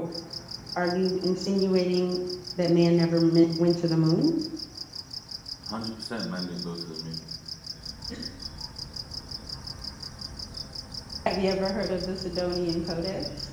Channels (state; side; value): identical; both; correlation 1.00